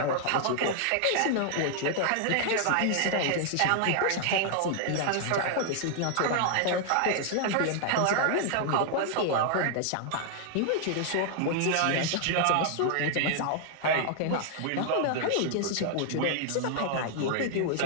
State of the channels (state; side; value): different; both; correlation 0.00